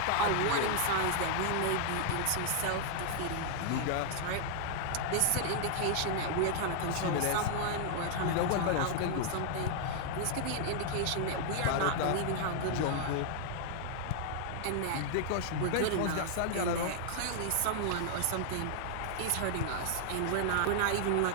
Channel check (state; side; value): different; both; correlation -0.01